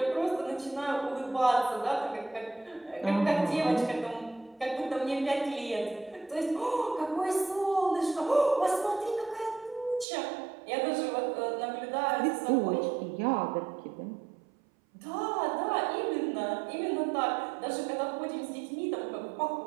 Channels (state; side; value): drops out; left; at 10.1 s